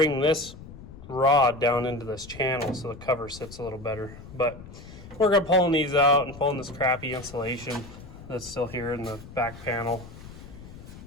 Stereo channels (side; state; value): left; noise; rumble, 16 dB below the sound